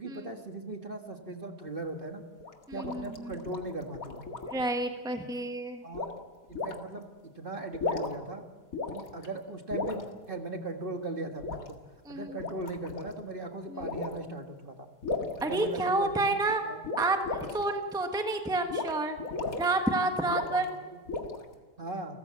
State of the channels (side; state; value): both; normal; correlation 0.21